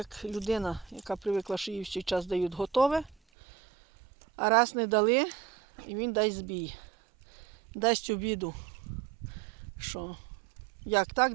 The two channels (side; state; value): left; drops out; at 3.2 s